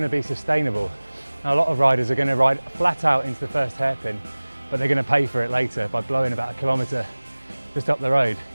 to be sustainable. Now, a lot of riders are going to ride flat out into the first hairpin, but they're going to pay for it later by blowing about 1 kilometre just up the road.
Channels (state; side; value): inverted; both; correlation -1.00